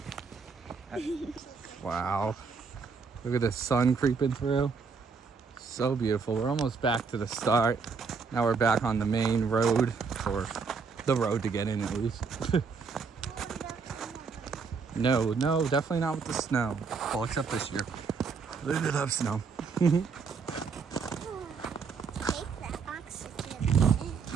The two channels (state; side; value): quieter; left; 5.2 dB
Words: Wow. Look at the sun creeping through. So beautiful. We're almost back to the start. Now we're back on the main road, or the road to get in at least. No, definitely not with the snow. Well, except this year. We did have snow. I'll